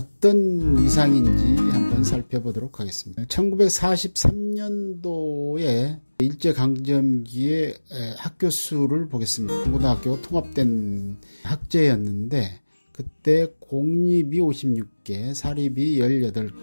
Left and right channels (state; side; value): inverted; both; correlation -1.00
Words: 위상인지 한번 살펴보도록 하겠습니다. 1943년도에 일제강점기의 학교 수를 보겠습니다. 중고등학교가 통합된 학제였는데 그때 공립이 56개, 사립이